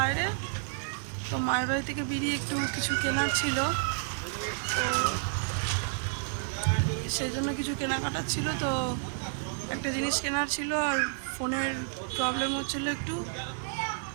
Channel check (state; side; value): silent; left; digital silence